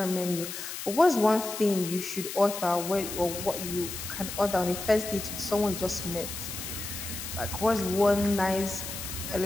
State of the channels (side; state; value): left; noise; hiss, 7 dB below the sound